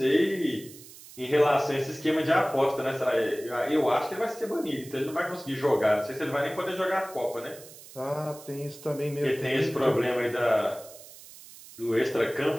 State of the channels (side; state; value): right; noise; hiss, 18 dB below the sound